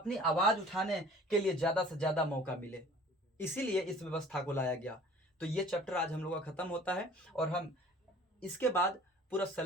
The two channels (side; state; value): both; normal; correlation 0.49